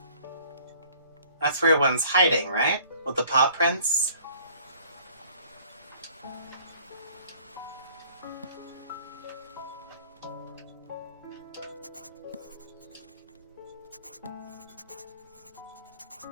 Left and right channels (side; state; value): both; inverted; correlation -0.55